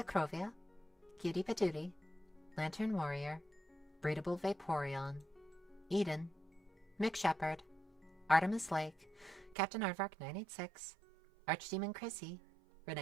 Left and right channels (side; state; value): left; drops out; at 9.6 s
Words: Cutie Patootie, Lantern Warrior, Breedable Vaporeon, Eden, Mick Shepherd, Artemis Lake, Captain Aardvark 986, Archdemon Chrissy,